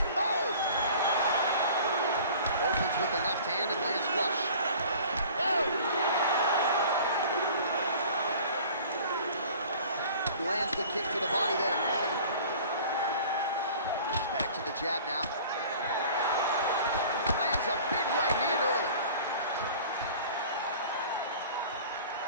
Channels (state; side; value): inverted; both; correlation -0.46